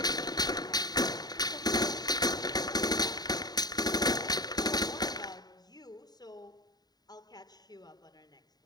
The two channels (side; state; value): right; late; 0.19 ms